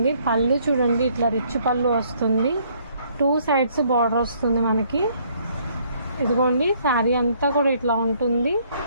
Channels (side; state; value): both; inverted; correlation -0.65